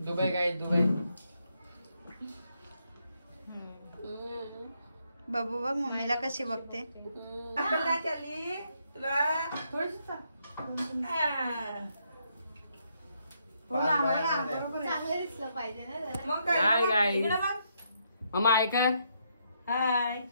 काय दुबई। बाबू बघ मम्मीला कशी बघते। चली तुला थोडीशी चांगलं दिसलं पाहिजे ना जरा। मग काय? हाय गाईज, इकडे बघ। मम्मा ऐका। हाय,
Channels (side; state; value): both; inverted; correlation -0.76